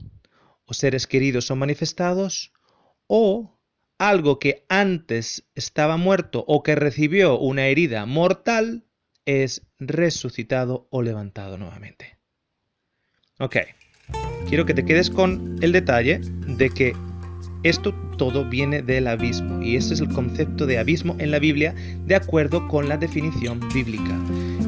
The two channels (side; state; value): both; identical; correlation 1.00